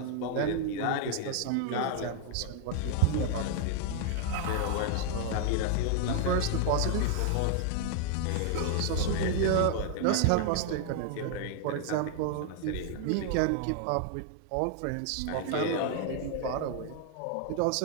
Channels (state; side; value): different; both; correlation -0.01